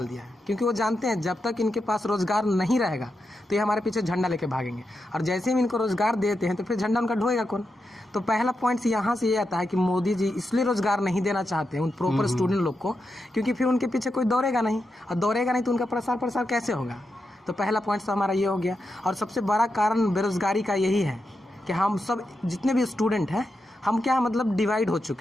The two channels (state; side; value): normal; both; correlation 0.87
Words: दिया है। क्योंकि वो जानते हैं जब तक इनके पास रोजगार नहीं रहेगा तो ये हमारे पीछे झंडा लेके भागेंगे, और जैसे ही इनको रोजगार देते हैं तो फिर झंडा उनका ढोएगा कौन? तो पहला पॉइंट यहाँ से ये आता है कि मोदी जी इसलिए रोजगार नहीं देना चाहते हैं उन प्रॉपर स्टूडेंट लोग को, क्योंकि फिर उनके पीछे कोई दौड़ेगा नहीं, और दौड़ेगा नहीं तो उनका प्रसार कैसे होगा? तो पहला पॉइंट तो हमारा ये हो गया। और सबसे बड़ा कारण बेरोजगारी का यही है कि हम सब जितने भी स्टूडेंट हैं, हम क्या मतलब डिवाइड हो